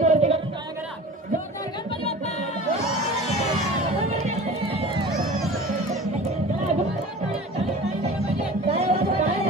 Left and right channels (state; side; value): normal; both; correlation 0.38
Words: वरती करून टाळ्या करा. जोरदार गणपती बाप्पा.